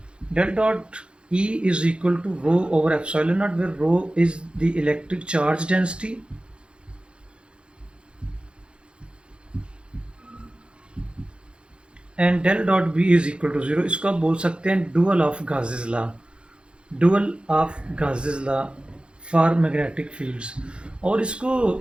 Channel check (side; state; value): left; late; 0.056 ms